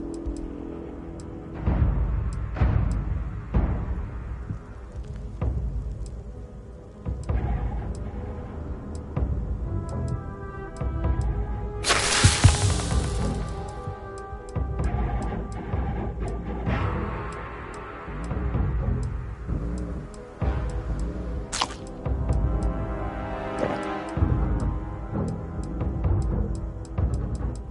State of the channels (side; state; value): both; identical; correlation 1.00